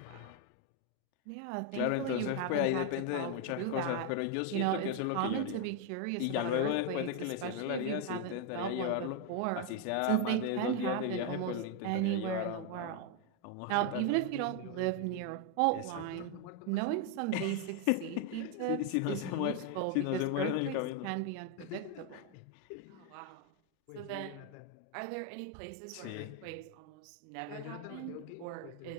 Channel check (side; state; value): both; different; correlation 0.01